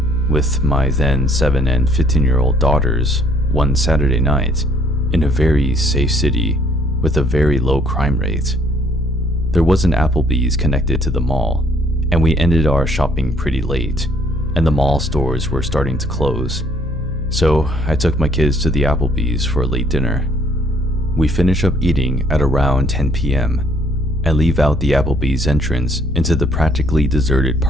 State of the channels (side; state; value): both; normal; correlation 0.64